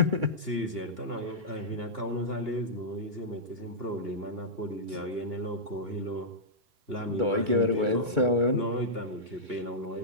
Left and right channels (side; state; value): left; late; 2.3 ms